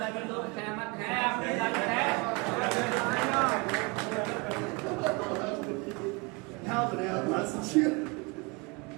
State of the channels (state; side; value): quieter; left; 27.9 dB